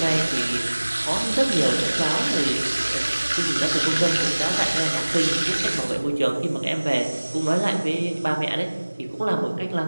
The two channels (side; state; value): both; inverted; correlation -1.00